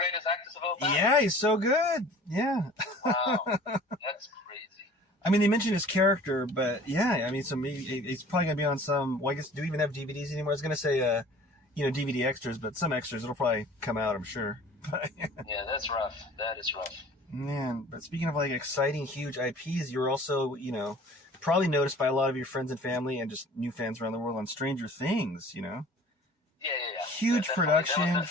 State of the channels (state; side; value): normal; both; correlation 0.46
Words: actors of all time. Yeah, he's so good. Yeah. Wow, that's crazy. I mean, they mentioned his character, but yeah, I mean, he's probably gonna be on some. Well, I guess do we even have DVDs anymore? I was gonna say, DVD extras, but some extras it'll probably come out, I'm sure. Yeah, that's rough. That is rough. Man, but speaking of like exciting, huge IPs, you're also, probably noticed by a lot of your friends and family and just new fans around the world on Stranger Things, Yeah. Huge production,